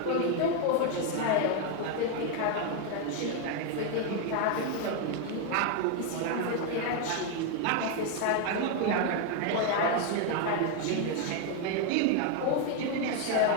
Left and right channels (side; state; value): both; different; correlation 0.01